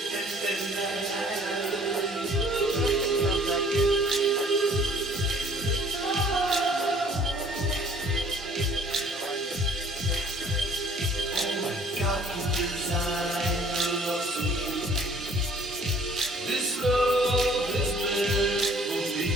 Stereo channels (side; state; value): both; normal; correlation 0.55